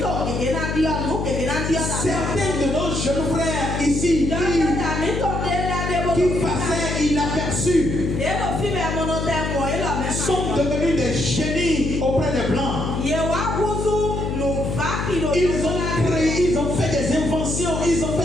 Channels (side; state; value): left; noise; hum, 2 dB below the sound